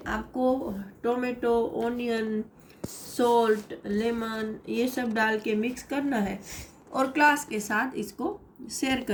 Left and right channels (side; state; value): both; identical; correlation 1.00